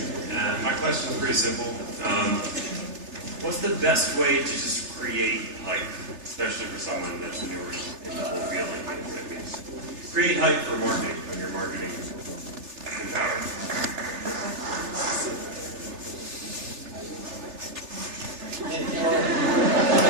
My question is pretty simple. What's the best way to just create hype, especially for someone that's newer in the whole field? Like what it means. Create hype for marketing when you're marketing empowered.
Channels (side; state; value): left; late; 3.3 ms